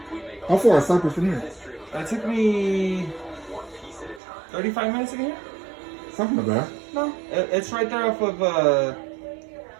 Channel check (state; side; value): drops out; left; at 4.2 s